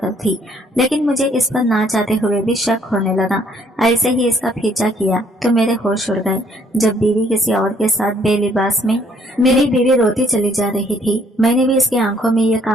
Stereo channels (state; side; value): normal; both; correlation 0.65